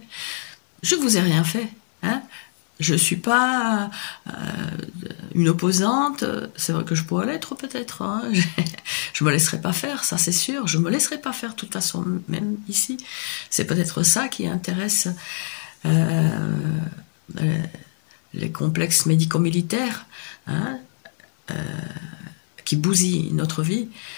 Je vous ai rien fait. Hein. Je suis pas une opposante. C'est vrai que je pourrais l'être peut-être. Hein. Je me laisserai pas faire, ça c'est sûr. Je me laisserai pas faire de toute façon, même ici. C'est peut-être ça qui intéresse les complexes médico-militaires. Hein, qui bousille notre vie,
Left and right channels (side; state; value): right; silent; digital silence